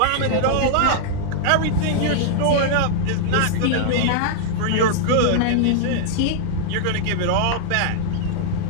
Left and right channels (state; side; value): different; both; correlation -0.01